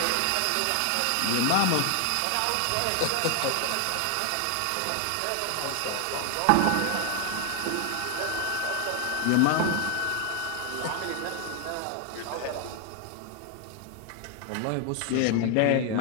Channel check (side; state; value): both; different; correlation 0.00